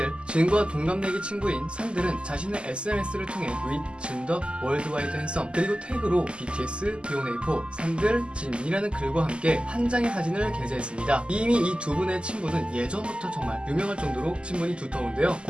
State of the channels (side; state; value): left; late; 0.051 ms